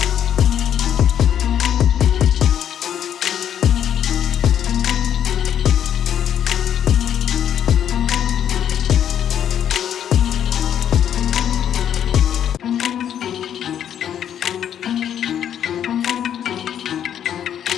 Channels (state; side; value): quieter; right; 9.7 dB